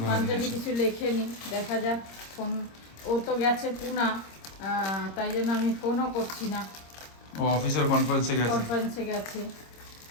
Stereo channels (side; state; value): right; late; 26 ms